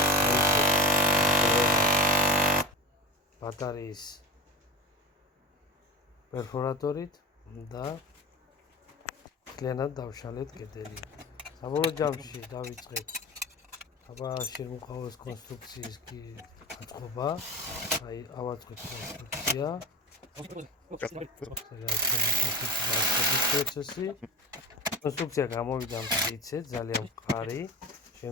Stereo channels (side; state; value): both; normal; correlation 0.27